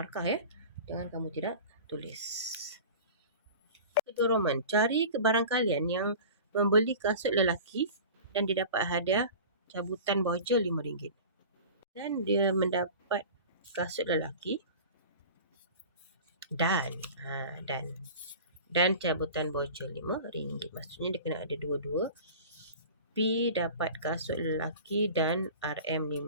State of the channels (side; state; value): both; inverted; correlation -0.38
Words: ya. Jangan kamu tidak tulis. Kedua Roman, cari barang kalian yang membeli kasut lelaki dan dia dapat hadiah cabutan voucher RM5. Dan dia mendapat kasut lelaki dan cabutan voucher RM5. Maksudnya dia kena ada dua-dua. P dapat kasut lelaki dan